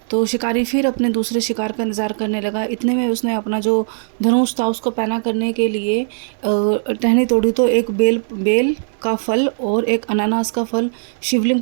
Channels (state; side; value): silent; left; digital silence